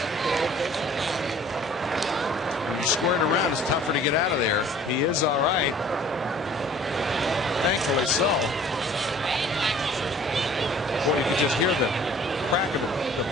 When you square it around, it's tougher to get out of there. He is all right. Thankfully so. Boy, you can just hear the crack of the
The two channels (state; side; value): normal; both; correlation 0.51